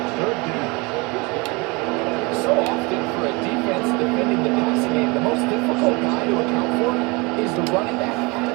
third down. So often for a defense defending the passing game, the most difficult guy to account for is the running back out of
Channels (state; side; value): quieter; left; 26.8 dB